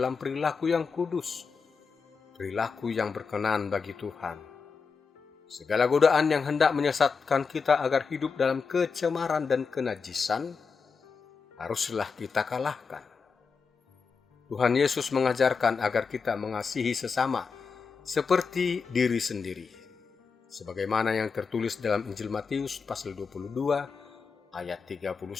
perilaku yang kudus, perilaku yang berkenan bagi Tuhan. Segala godaan yang hendak menyesatkan kita agar hidup dalam kecemaran dan kenajisan, haruslah kita kalahkan. Tuhan Yesus mengajarkan agar kita mengasihi sesama seperti diri sendiri, sebagaimana yang tertulis dalam Injil Matius pasal 22 ayat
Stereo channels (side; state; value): right; quieter; 5.3 dB